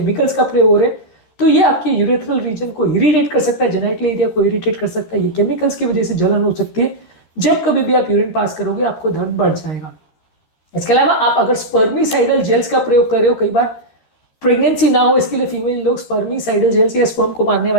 का प्रयोग हो रहा है, तो ये आपके यूरेथ्रल रीजन को इरिटेट कर सकता है, जेनेटल एरिया को इरिटेट कर सकता है। ये केमिकल्स की वजह से जलन हो सकती है। जब कभी भी आप यूरिन पास करोगे आपको दर्द बढ़ जाएगा। इसके अलावा आप अगर स्पर्मिसाइडल जेल्स का प्रयोग कर रहे हो, कई बार प्रेगनेंसी ना हो इसके लिए फीमेल लोग स्पर्मिसाइडल जेल्स या स्पर्म को मारने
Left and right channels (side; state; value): right; late; 13 ms